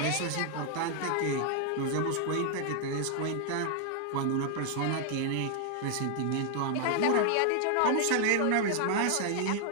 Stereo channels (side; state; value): both; different; correlation 0.00